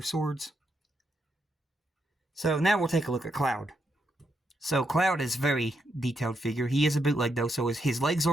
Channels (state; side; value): normal; both; correlation 0.80